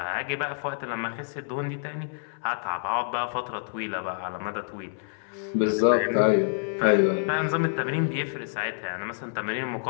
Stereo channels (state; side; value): silent; right; 60 dB below the other